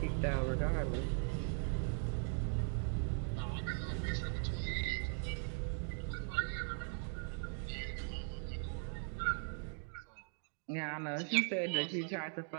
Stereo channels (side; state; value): left; silent; 51 dB below the other